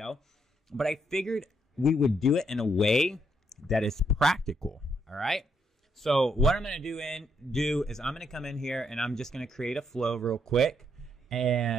But I figured we would do it in a way that is practical. All right. So what I'm going to do is I'm going to come in here, and I'm just going to create a flow real quick.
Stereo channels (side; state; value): both; normal; correlation 0.76